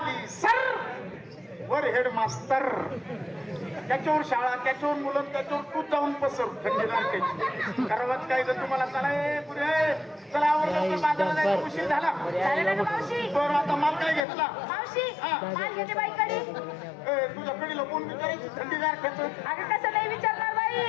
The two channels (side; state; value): right; drops out; at 14.2 s